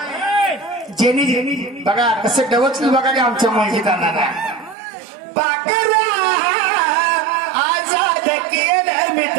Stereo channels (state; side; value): drops out; left; at 4.8 s